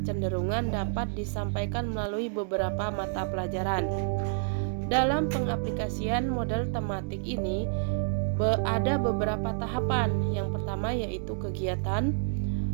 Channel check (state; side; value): silent; left; digital silence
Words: dapat disampaikan melalui beberapa mata pelajaran. Dalam pengaplikasian model tematik ini ada beberapa tahapan. Yang pertama yaitu kegiatan,